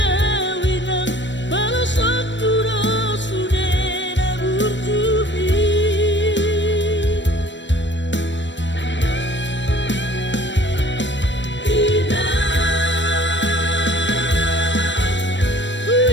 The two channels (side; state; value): right; late; 0.53 ms